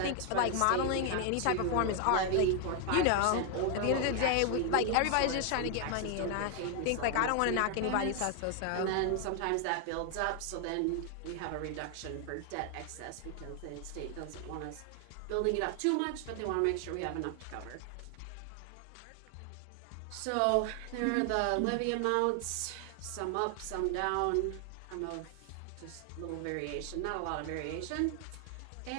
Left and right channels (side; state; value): both; different; correlation 0.00